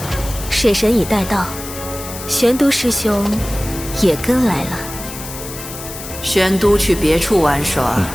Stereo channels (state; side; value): noise; left; hiss, 11 dB below the sound